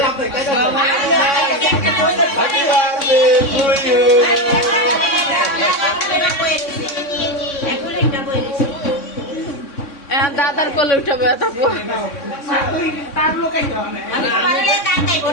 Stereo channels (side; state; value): right; late; 3.6 ms